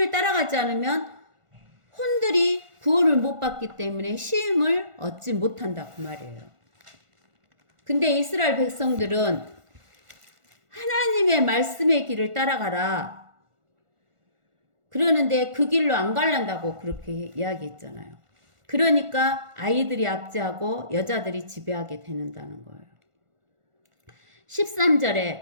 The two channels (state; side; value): late; left; 1.5 ms